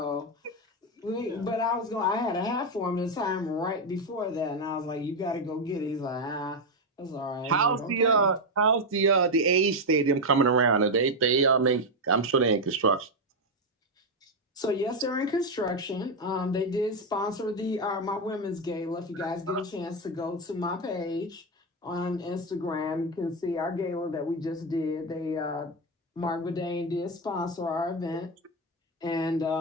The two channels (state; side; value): normal; both; correlation 0.06